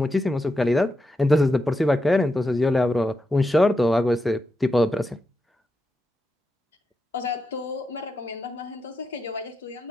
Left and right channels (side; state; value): both; normal; correlation 0.87